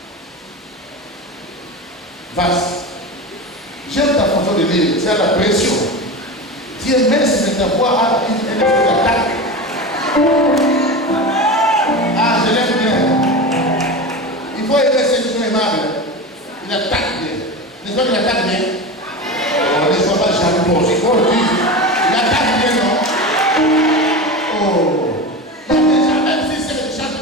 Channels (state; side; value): normal; both; correlation 0.25